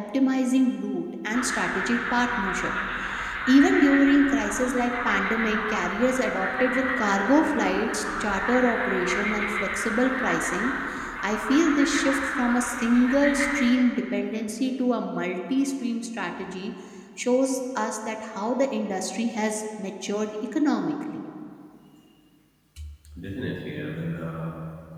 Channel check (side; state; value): both; identical; correlation 1.00